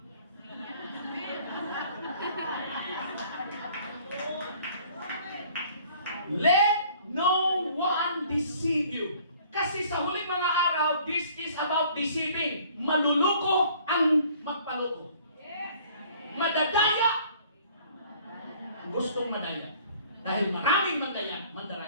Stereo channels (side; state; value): both; inverted; correlation -0.55